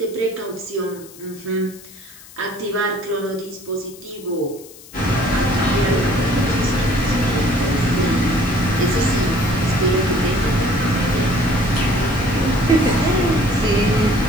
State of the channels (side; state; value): left; noise; hiss, 20 dB below the sound